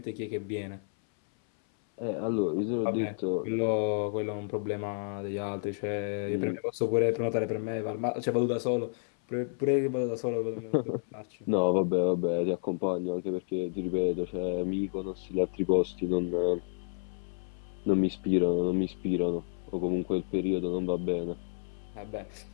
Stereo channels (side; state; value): right; silent; 57 dB below the other